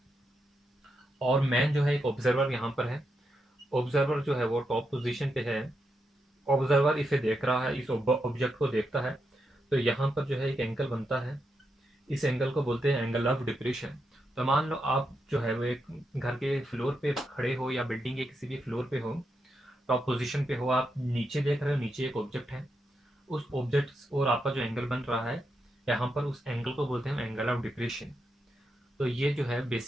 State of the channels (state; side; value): normal; both; correlation 0.84